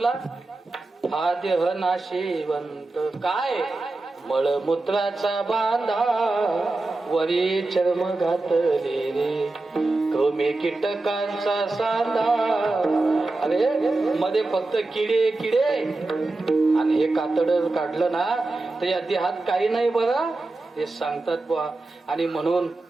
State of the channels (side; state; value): left; quieter; 3.1 dB